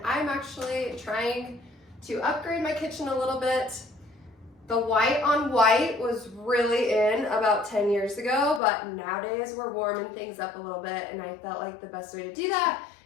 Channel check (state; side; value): drops out; right; at 8.6 s